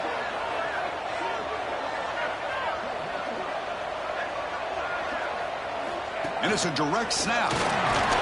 And it's a direct snap.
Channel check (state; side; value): identical; both; correlation 1.00